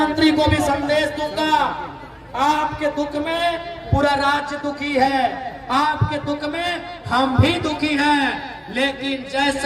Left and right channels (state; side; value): identical; both; correlation 1.00